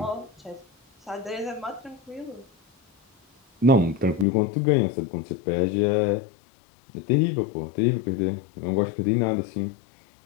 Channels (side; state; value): right; drops out; at 4.2 s